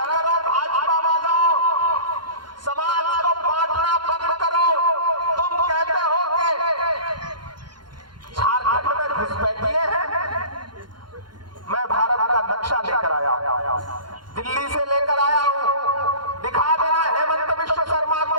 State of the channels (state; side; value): late; left; 0.71 ms